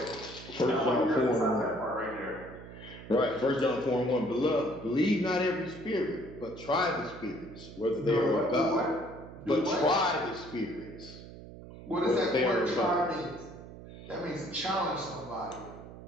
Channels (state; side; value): noise; right; hum, 15 dB below the sound